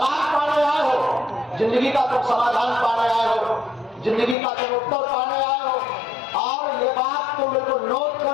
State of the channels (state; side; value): drops out; right; at 4.4 s